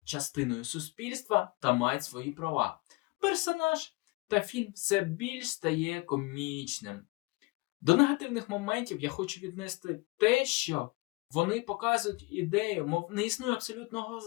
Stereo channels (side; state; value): right; quieter; 24.6 dB